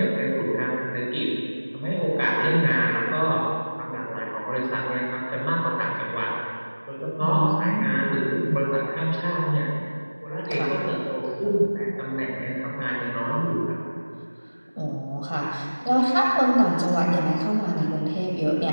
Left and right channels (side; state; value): both; inverted; correlation -1.00